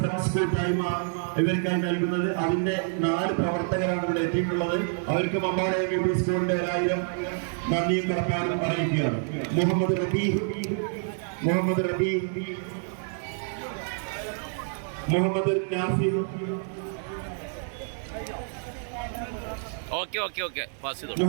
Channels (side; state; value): left; silent; 60 dB below the other